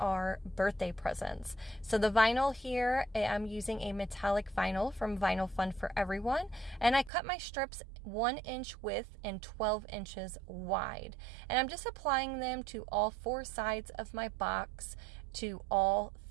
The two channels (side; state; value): left; drops out; at 7.1 s